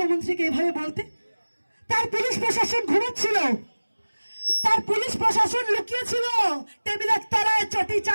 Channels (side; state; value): both; inverted; correlation -1.00